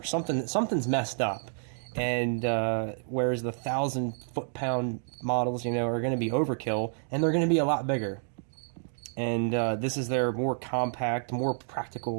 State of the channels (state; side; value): silent; left; digital silence